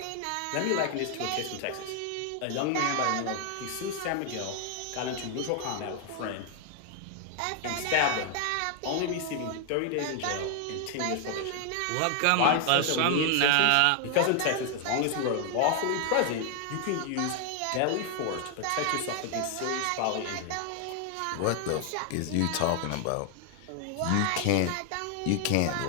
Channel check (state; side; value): different; both; correlation 0.00